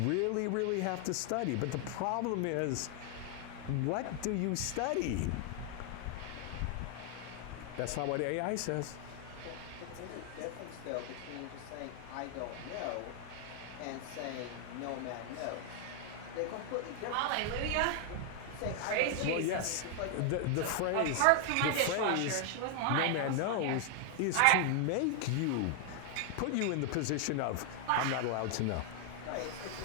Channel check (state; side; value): different; both; correlation 0.00